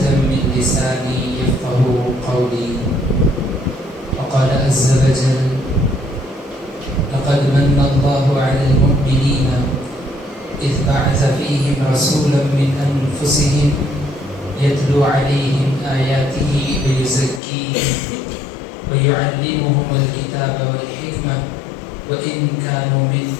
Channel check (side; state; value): right; drops out; at 17.4 s